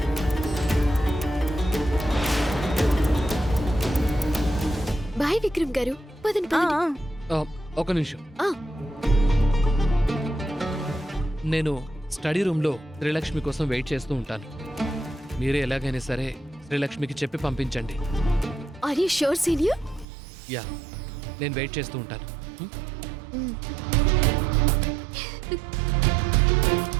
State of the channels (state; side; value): drops out; left; at 20.1 s